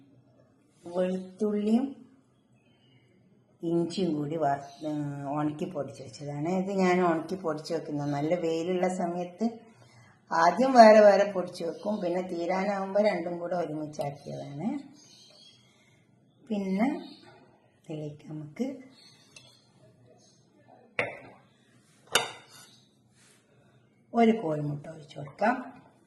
വെളുത്തുള്ളിയും ഇഞ്ചിയും കൂടി ഉണക്കി പൊടിച്ച് വെച്ചതാണ്. ഇത് ഞാൻ ഉണക്കി പൊടിച്ച് വെക്കുന്നത് നല്ല വെയിലുള്ള സമയത്ത് ആദ്യം വേറെ വേറെ പൊടിച്ച് വെക്കും, പിന്നെ തീരാനാകുമ്പോൾ രണ്ടും കൂടെ ഒരുമിച്ചാക്കിയതാണ്. പിന്നെ ഇതിലേക്ക് നമുക്ക് ഒരു കോഴിമുട്ട ഒഴിച്ച് കൊടുക്കാം.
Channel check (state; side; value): identical; both; correlation 1.00